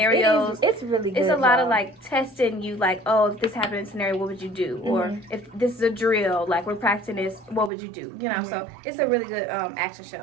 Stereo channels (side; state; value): left; drops out; at 7.7 s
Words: It's really good. It's a lot of like testing you, like, oh, if this happened in a scenario, what would you do? Mm-hmm. Or if this is a drill, like we're practicing this, what would you do? You know. Mm-hmm. So it's a really good action